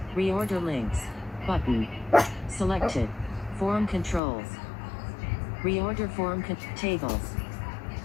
Reorder links. Button. Selected. Form controls. Reorder form tables.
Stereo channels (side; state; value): right; drops out; at 4.2 s